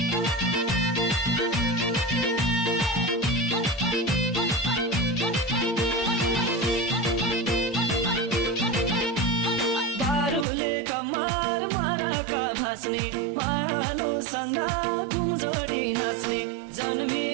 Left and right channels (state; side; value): drops out; left; at 10.5 s